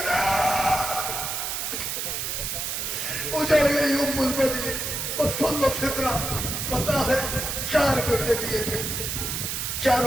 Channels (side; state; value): right; noise; hiss, 2 dB below the sound